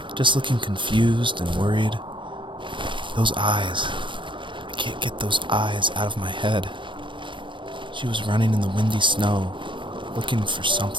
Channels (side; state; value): left; late; 0.24 ms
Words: just looking confused and worried. Those eyes. I can't get those eyes out of my head. She was running in the windy snow, looking for